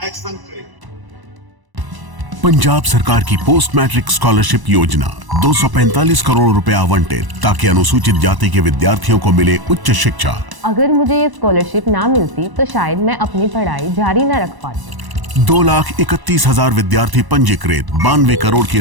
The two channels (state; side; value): late; left; 1.0 ms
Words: एक्शन करे। पंजाब सरकार की पोस्ट मैट्रिक स्कॉलरशिप योजना 245 करोड़ रुपए आवंटित ताकि अनुसूचित जाति के विद्यार्थियों को मिले उच्च शिक्षा। अगर मुझे ये स्कॉलरशिप ना मिलती तो शायद मैं अपनी पढ़ाई जारी न रख पाती। 2,31,000 विद्यार्थी पंजीकृत, 92 करोड़ की